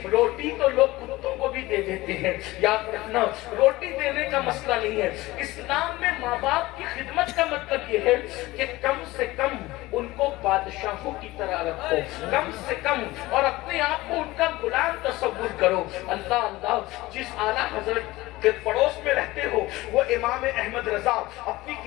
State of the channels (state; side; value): quieter; right; 19.1 dB